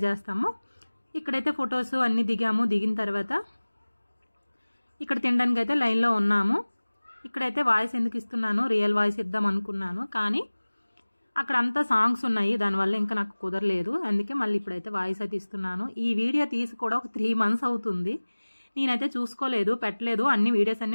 చేస్తాము. ఇక్కడైతే ఫొటోస్ అన్నీ దిగాము. దిగిన తర్వాత ఇక్కడ తినడానికి అయితే లైన్లో ఉన్నాము. ఇక్కడైతే వాయిస్ ఎందుకు ఇస్తున్నాను, రియల్ వాయిస్ ఇద్దాం అనుకున్నాను, కానీ అక్కడ అంతా సాంగ్స్ ఉన్నాయి, దానివల్ల ఇంకా నాకు కుదరలేదు. అందుకే మళ్ళీ ఇప్పుడైతే వాయిస్ అయితే ఇస్తున్నాను. ఈ వీడియో తీసి కూడా ఒక 3 months అవుతుంది. నేనైతే చూసుకోలేదు, పెట్టలేదు. అన్ని వీడియోస్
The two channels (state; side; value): inverted; both; correlation -1.00